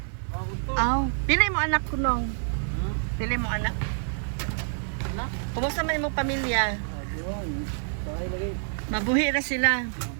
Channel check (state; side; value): silent; left; digital silence